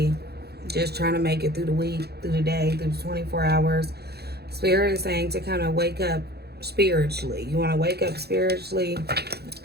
just trying to make it through the week, through the day, through the 24 hours. Spirit is saying to kind of wake up spiritually. You want to wake up spiritually,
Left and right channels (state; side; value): late; left; 0.47 ms